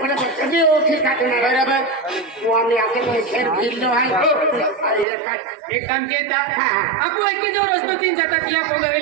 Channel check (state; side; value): drops out; left; at 5.1 s